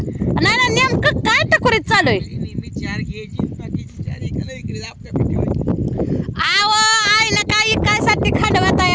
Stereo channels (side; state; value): both; identical; correlation 1.00